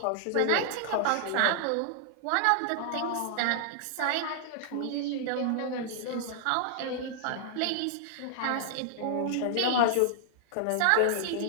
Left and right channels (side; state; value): both; different; correlation -0.01